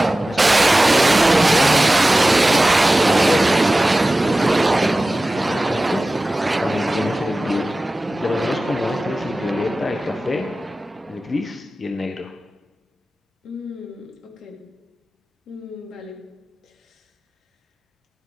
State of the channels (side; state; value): both; normal; correlation 0.96